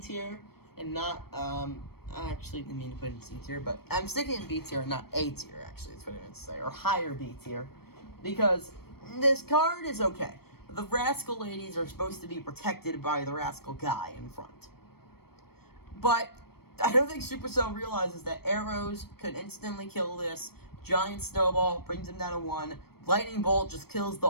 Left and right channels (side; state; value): right; late; 0.95 ms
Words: and not, I actually didn't mean to put it in C tier, but I'm sticking in B tier and not A tier, actually, that's what I meant to say, or higher B tier. Because this card is okay. The Rascal ladies are supposed to be protected by the Rascal guy in front. But I don't think Supercell realizes that arrows could instantly kill this. Giant Snowball brings him down to 1. Lightning Bolt just kills